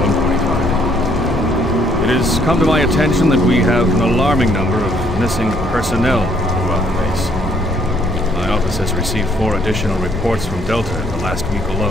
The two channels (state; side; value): normal; both; correlation 0.66